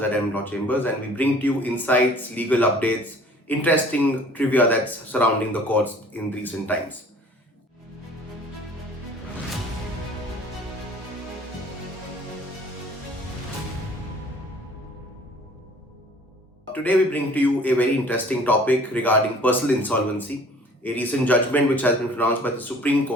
NM Law Chambers, and we bring to you insights, legal updates, interesting trivia that's surrounding the courts in recent times. Today, we bring to you a very interesting topic regarding personal insolvency, a recent judgment which has been pronounced by the Supreme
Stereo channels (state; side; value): normal; both; correlation 0.51